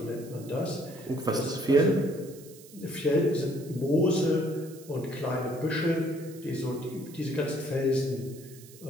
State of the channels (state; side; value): noise; right; hiss, 21 dB below the sound